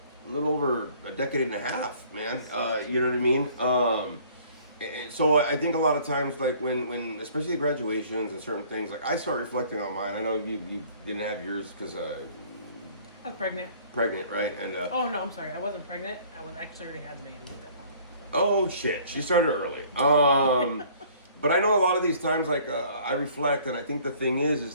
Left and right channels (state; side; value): inverted; both; correlation -0.55